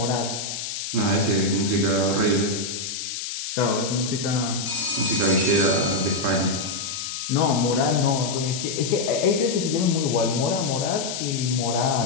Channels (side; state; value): left; noise; hiss, 6 dB below the sound